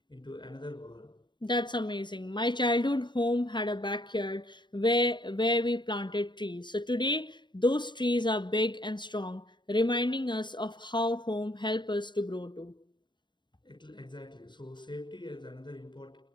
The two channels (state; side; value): late; right; 0.22 ms